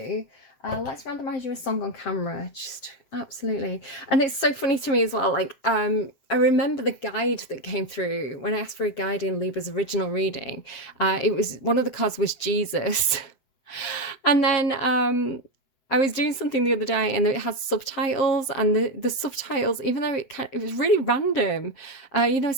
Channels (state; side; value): late; right; 7.6 ms